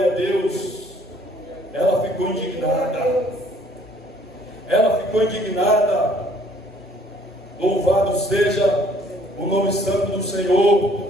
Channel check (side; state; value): both; normal; correlation 0.60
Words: a Deus, ela ficou indignada. Ela ficou indignada. Louvado seja o nome santo do